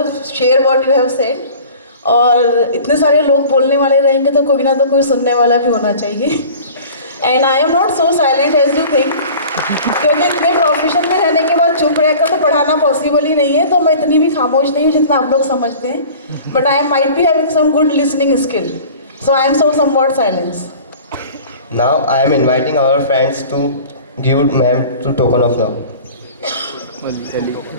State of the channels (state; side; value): inverted; both; correlation -0.43